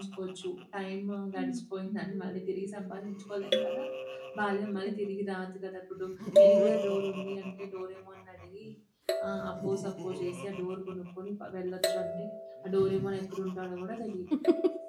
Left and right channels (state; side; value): identical; both; correlation 1.00